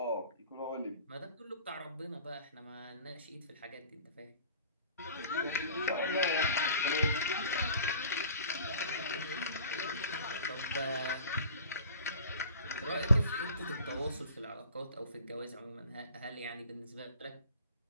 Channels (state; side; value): inverted; both; correlation -0.45